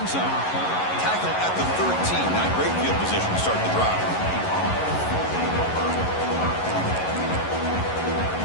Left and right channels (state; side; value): late; right; 11 ms